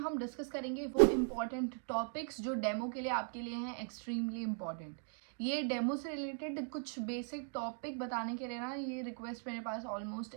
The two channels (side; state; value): left; silent; 52 dB below the other